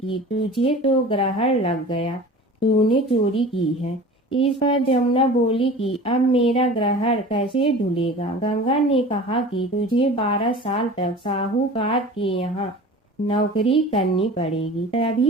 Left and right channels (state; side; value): normal; both; correlation 0.39